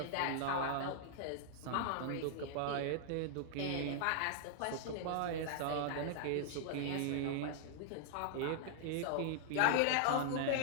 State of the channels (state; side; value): different; both; correlation -0.01